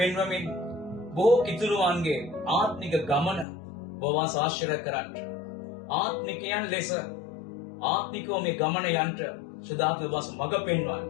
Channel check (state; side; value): drops out; right; at 3.5 s